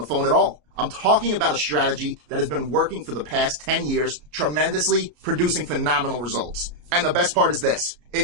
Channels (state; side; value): late; left; 33 ms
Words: phone at all. I'm talking about a strategy that has been working for the past 10 years, tremendously, producing phenomenal results. And the best part is this.